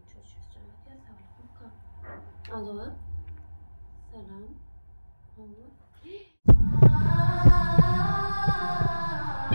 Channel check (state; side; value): inverted; both; correlation -1.00